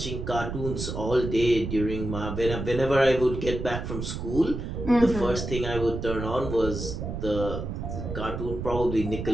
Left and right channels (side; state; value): right; noise; rumble, 5 dB below the sound